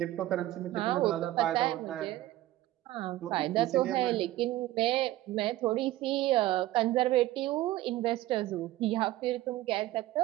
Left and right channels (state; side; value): quieter; left; 15.8 dB